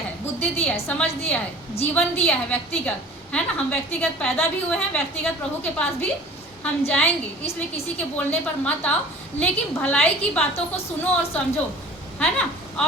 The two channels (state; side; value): normal; both; correlation 0.44